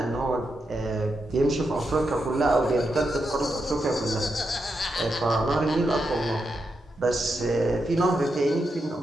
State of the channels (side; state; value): both; normal; correlation 0.85